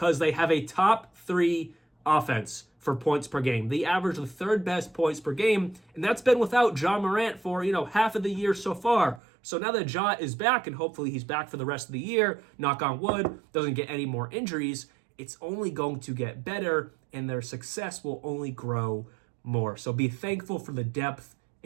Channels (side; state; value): left; drops out; at 9.2 s